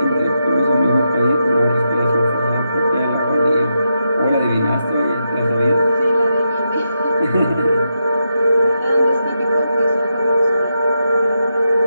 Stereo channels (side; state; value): both; inverted; correlation -0.84